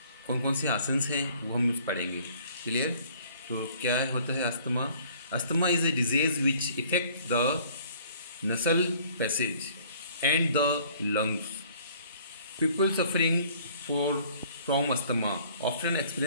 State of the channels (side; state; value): both; inverted; correlation -0.55